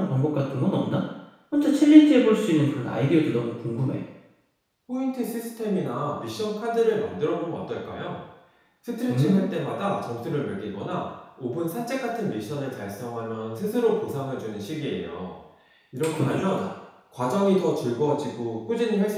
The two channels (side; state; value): both; identical; correlation 1.00